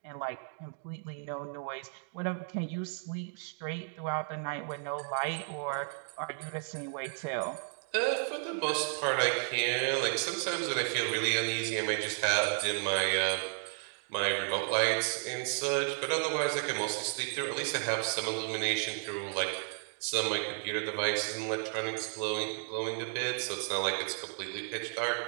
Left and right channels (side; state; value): left; silent; 56 dB below the other